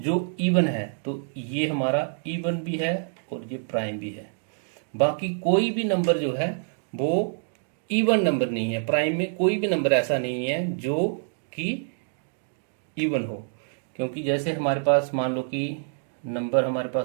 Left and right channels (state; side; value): silent; left; digital silence